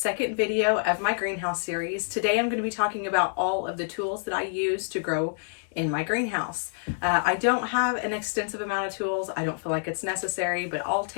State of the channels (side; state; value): right; silent; digital silence